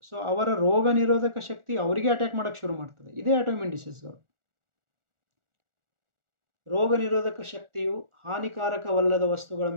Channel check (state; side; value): late; left; 1.4 ms